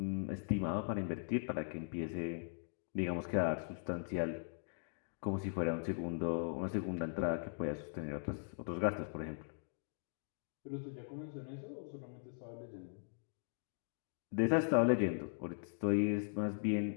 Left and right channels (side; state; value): right; silent; digital silence